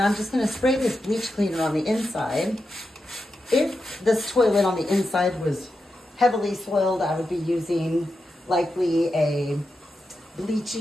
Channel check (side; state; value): both; normal; correlation 0.88